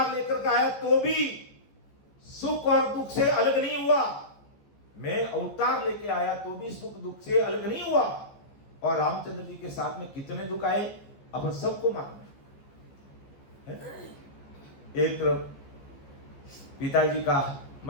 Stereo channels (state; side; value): late; right; 14 ms